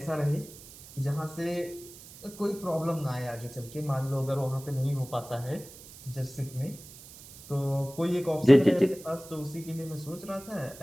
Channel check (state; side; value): noise; right; hiss, 18 dB below the sound